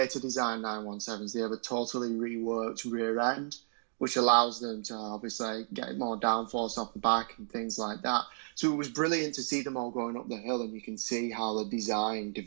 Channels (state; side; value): silent; left; digital silence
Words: design 917s, they have a totally reworked rear end, which allows them to obviously get more downforce off the back and things like that. So it was brilliant to see them all going up the hill, and you can see how the design